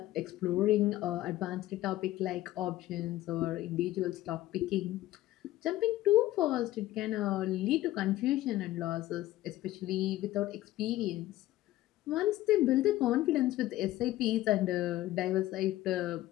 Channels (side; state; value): right; quieter; 15.5 dB